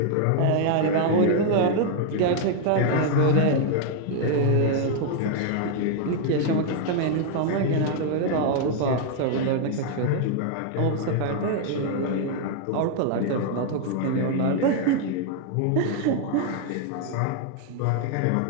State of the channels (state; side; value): different; both; correlation 0.00